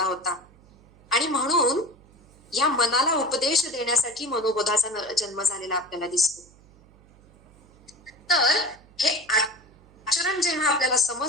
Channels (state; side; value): noise; right; hum, 27 dB below the sound